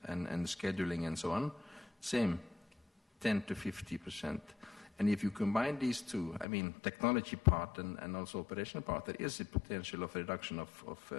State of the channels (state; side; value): drops out; right; at 6.5 s